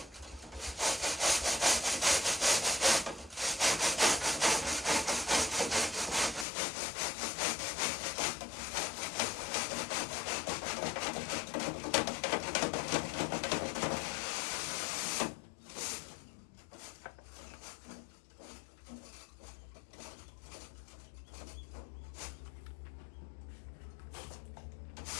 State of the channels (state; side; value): drops out; right; at 6.5 s